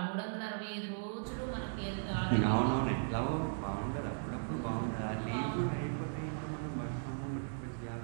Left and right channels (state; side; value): silent; left; digital silence